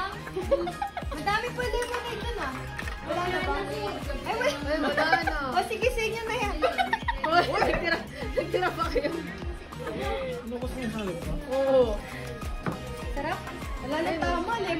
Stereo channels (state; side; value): identical; both; correlation 1.00